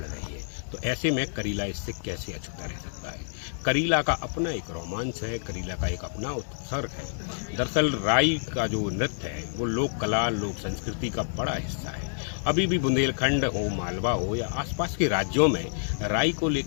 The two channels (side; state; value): right; silent; 59 dB below the other